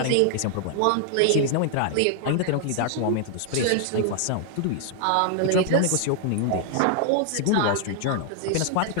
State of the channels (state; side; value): different; both; correlation 0.00